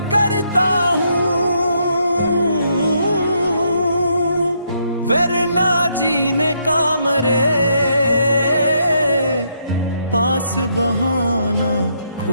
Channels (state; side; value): inverted; both; correlation -0.75